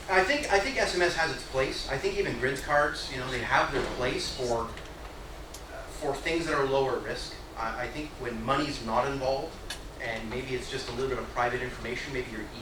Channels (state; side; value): identical; both; correlation 1.00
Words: I think SMS has its place. I think even grid cards, they have their place for things that are lower risk. I think when money's not involved, and maybe it's just a little bit of private information, maybe your